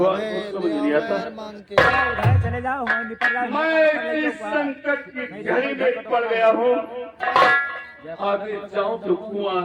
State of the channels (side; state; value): both; identical; correlation 1.00